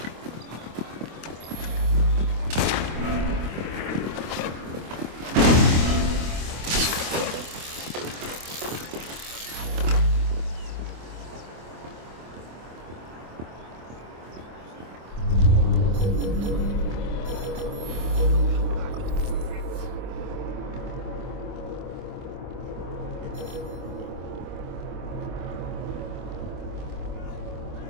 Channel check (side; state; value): left; late; 25 ms